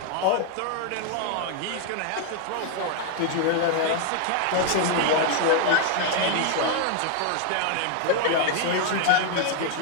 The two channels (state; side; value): different; both; correlation 0.00